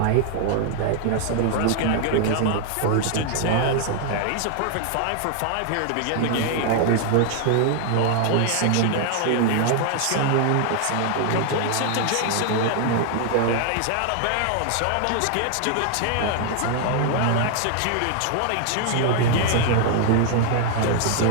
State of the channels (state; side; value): different; both; correlation 0.00